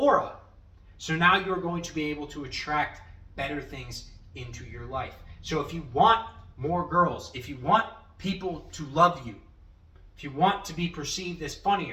So now you're going to be able to attract better things into your life. So if you want more girls, if you want people to love you, if you want to be perceived as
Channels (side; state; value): both; identical; correlation 1.00